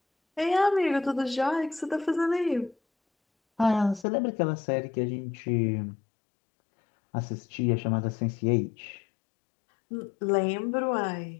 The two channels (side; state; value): right; drops out; at 4.0 s